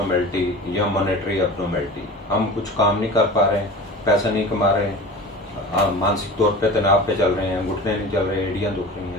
या मॉनेटरी एब्नॉर्मेलिटी। हम कुछ काम नहीं कर पा रहे हैं, पैसा नहीं कमा रहे हैं, मानसिक तौर पे तनाव पे चल रहे हैं, घुटने नहीं चल रहे, एड़ियाँ दुख रही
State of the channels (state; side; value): normal; both; correlation 0.36